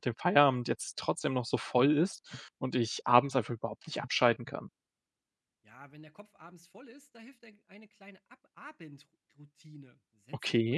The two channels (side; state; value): both; identical; correlation 1.00